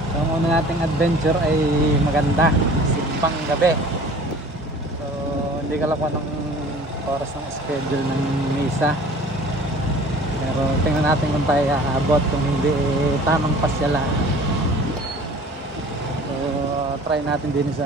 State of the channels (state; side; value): normal; both; correlation 0.47